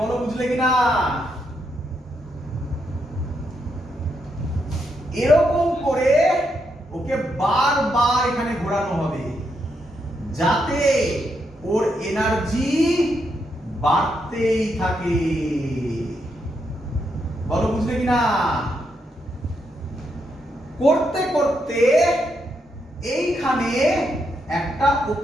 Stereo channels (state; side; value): normal; both; correlation 0.80